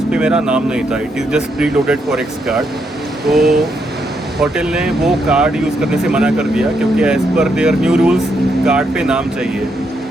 पर मेरा नाम नहीं था, it is just pre loaded forex card. तो होटल ने वो कार्ड यूज़ करने से मना कर दिया, क्योंकि as per their new rules card पे नाम चाहिए।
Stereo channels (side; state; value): both; normal; correlation 0.78